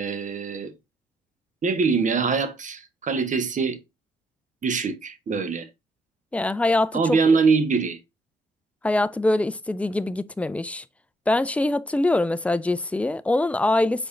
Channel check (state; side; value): normal; both; correlation 0.74